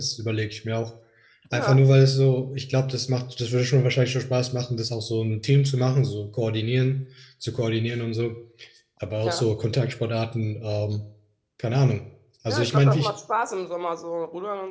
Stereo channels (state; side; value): identical; both; correlation 1.00